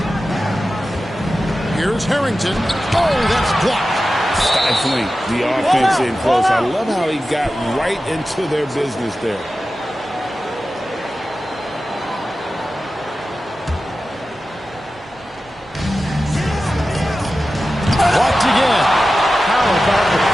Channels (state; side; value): normal; both; correlation 0.94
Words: Here's Harrington. Oh, that's blocked. Stifling the offense in close. I love how he got right into their business there. Blocked again. How about the